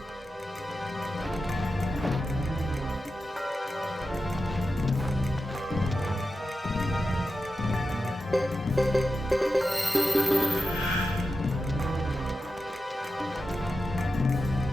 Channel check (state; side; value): normal; both; correlation 0.91